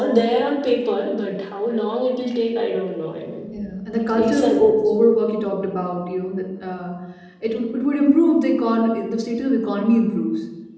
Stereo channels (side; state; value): both; identical; correlation 1.00